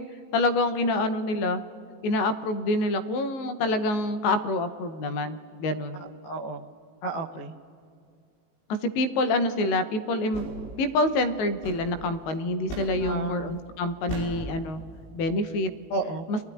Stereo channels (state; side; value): late; right; 18 ms